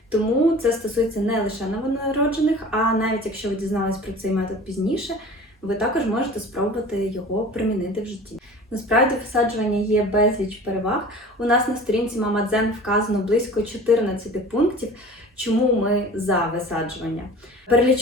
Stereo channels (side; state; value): both; normal; correlation 0.41